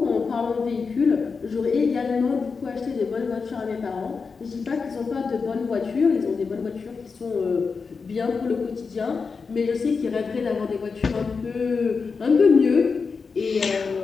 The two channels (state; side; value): quieter; right; 5.0 dB